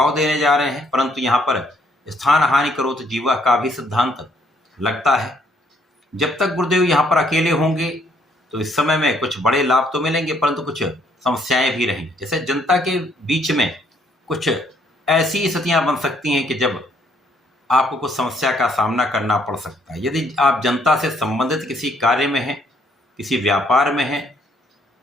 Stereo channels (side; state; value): both; normal; correlation 0.68